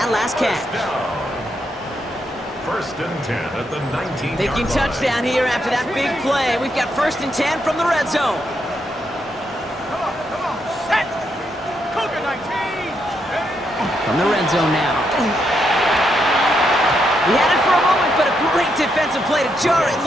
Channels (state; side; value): normal; both; correlation 0.79